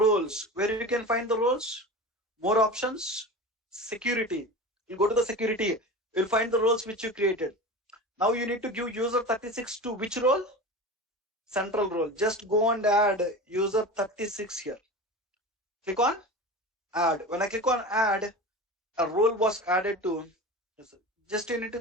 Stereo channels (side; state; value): both; normal; correlation 0.31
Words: Where you can find the roles? More options. Security. You go to the security. You'll find the roles which you created. Now you need to give user 36 to which role? Central role. Just go and add user 36 here. Click on add. When I click on add, a role was added to. Just you need to